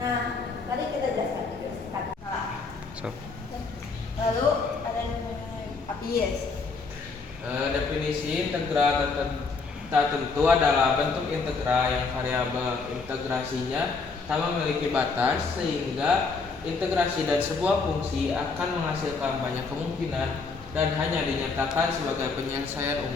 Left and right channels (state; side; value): quieter; right; 4.4 dB